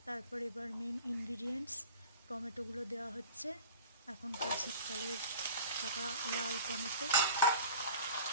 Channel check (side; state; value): both; inverted; correlation -0.42